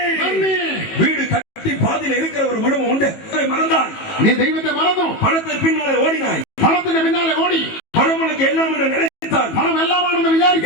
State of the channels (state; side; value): late; right; 18 ms